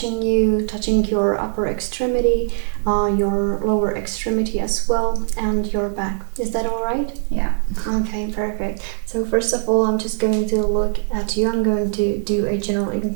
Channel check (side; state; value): left; silent; 62 dB below the other